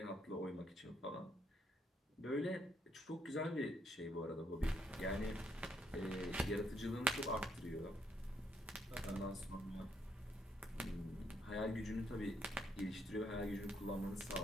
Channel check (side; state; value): both; normal; correlation 0.73